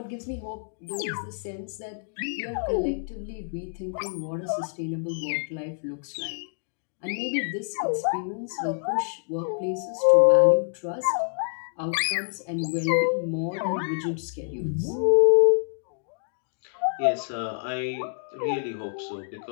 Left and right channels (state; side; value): silent; right; digital silence